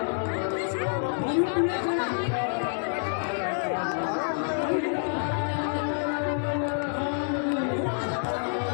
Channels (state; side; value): silent; right; digital silence